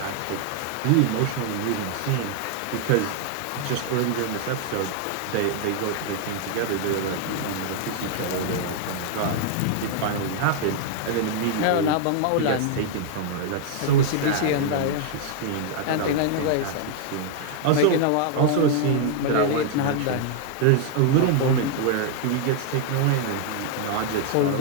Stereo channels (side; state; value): both; different; correlation 0.00